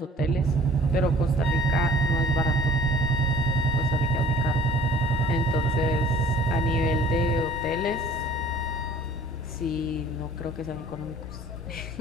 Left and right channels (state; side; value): normal; both; correlation 0.51